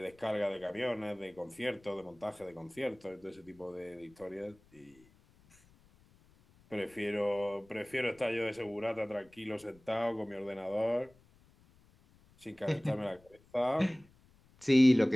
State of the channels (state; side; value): noise; left; rumble, 29 dB below the sound